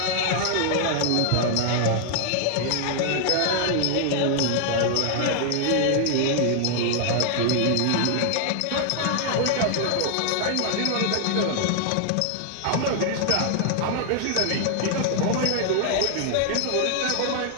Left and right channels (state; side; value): different; both; correlation 0.00